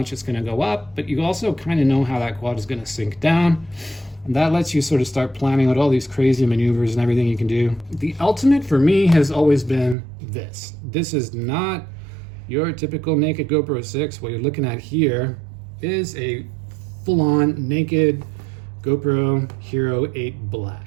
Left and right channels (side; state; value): left; drops out; at 10.0 s